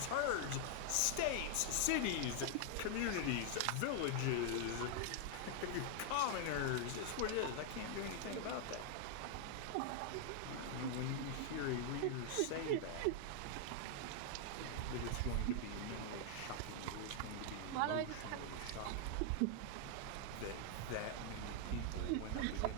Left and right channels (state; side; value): different; both; correlation 0.00